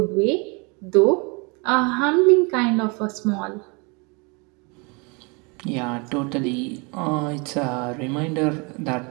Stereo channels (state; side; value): quieter; left; 30.7 dB